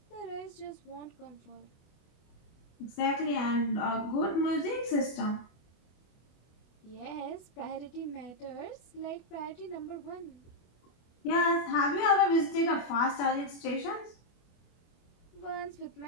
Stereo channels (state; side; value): late; right; 24 ms